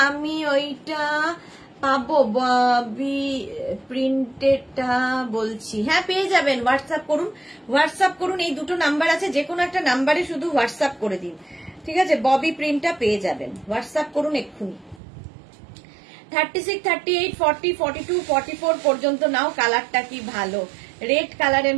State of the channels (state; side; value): drops out; left; at 15.0 s